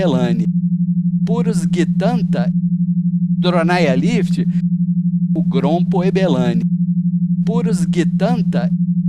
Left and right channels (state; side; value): identical; both; correlation 1.00